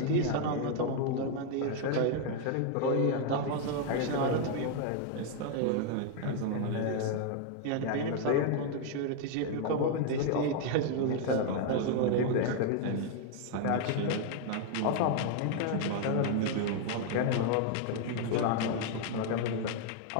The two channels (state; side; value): different; both; correlation 0.00